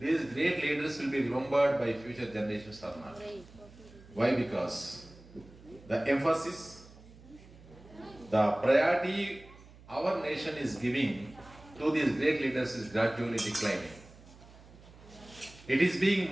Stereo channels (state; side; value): noise; right; hum, 21 dB below the sound